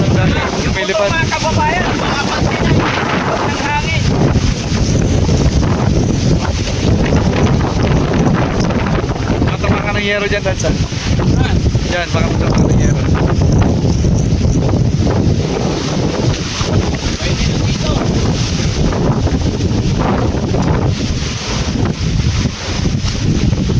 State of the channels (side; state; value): both; identical; correlation 1.00